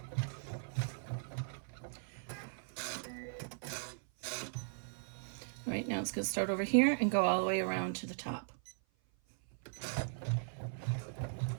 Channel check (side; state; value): left; silent; 52 dB below the other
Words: Right now it's going to start over here and go all the way around to the top.